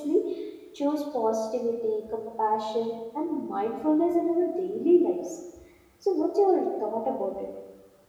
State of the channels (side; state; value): both; identical; correlation 1.00